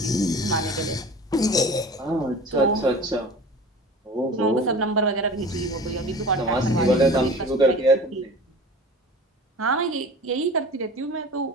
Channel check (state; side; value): normal; both; correlation 0.38